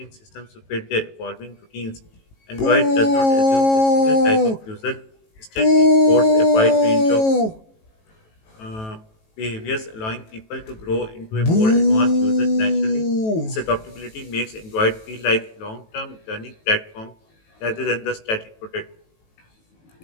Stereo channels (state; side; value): late; right; 18 ms